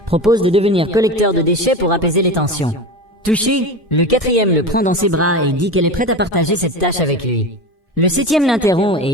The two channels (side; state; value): both; normal; correlation 0.26